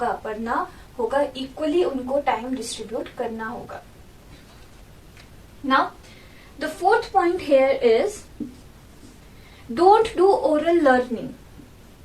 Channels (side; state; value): both; identical; correlation 1.00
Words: पढ़ना होगा, इक्वली उनको टाइम डिस्ट्रीब्यूट करना होगा। Now the fourth point here is don't do oral learning.